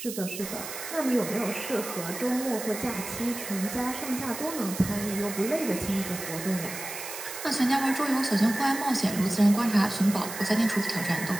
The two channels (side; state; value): right; noise; hiss, 9 dB below the sound